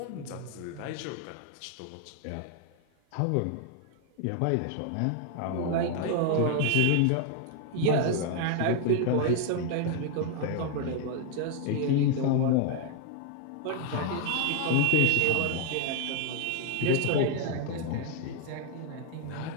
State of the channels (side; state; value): both; different; correlation 0.00